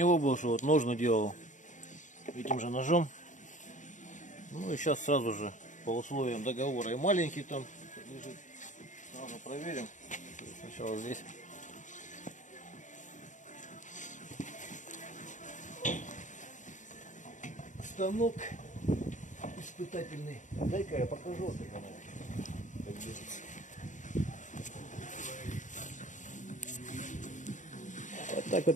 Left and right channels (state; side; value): late; right; 0.36 ms